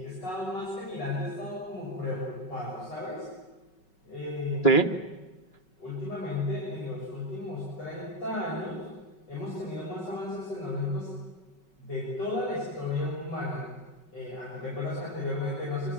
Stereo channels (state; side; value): late; right; 5.3 ms